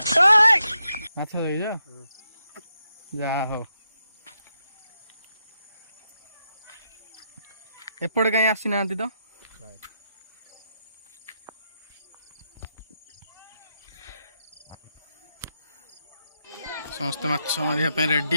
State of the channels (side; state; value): both; inverted; correlation -0.83